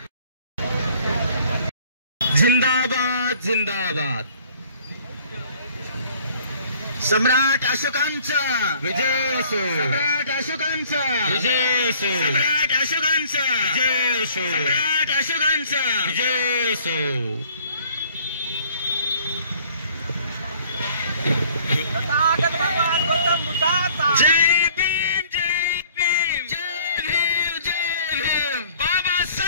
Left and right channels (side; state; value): both; inverted; correlation -0.56